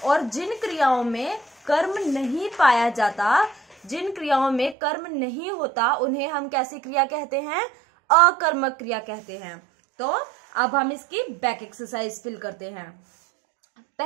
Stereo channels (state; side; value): drops out; left; at 4.8 s